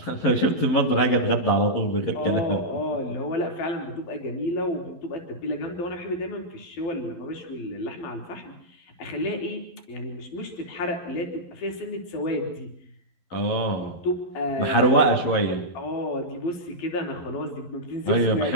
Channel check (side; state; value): right; late; 12 ms